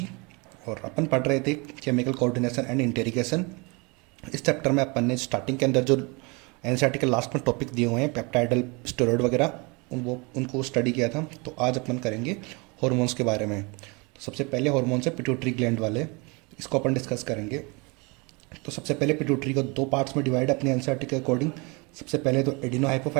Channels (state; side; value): quieter; left; 28.8 dB